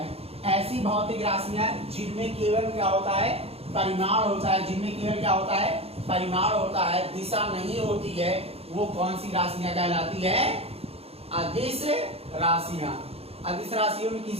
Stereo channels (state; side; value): late; left; 0.29 ms